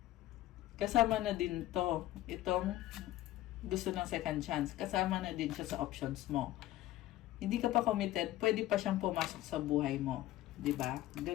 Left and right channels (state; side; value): quieter; right; 15.1 dB